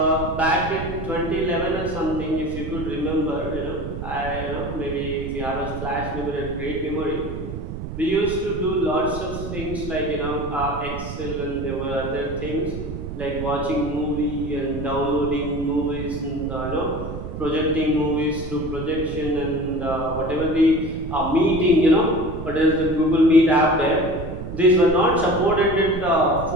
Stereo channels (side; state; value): right; noise; rumble, 8 dB below the sound